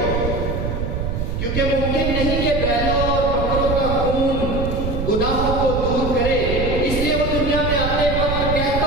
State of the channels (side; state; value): right; noise; rumble, 2 dB below the sound